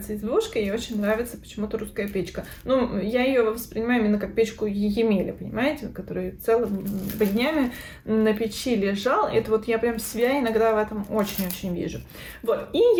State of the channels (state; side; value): identical; both; correlation 1.00